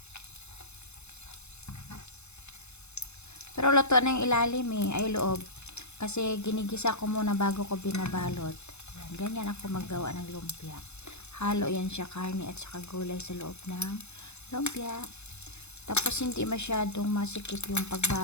Pero luto na yung ilalim ay loob. Kasi ginigisa ko muna bago ko binabalot. Yan, ganyan ako maggawa ng lumpia. Halo yan siya, karne at saka gulay sa loob ng lumpia. Tapos hindi masyadong masikip yung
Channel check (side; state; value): right; late; 0.81 ms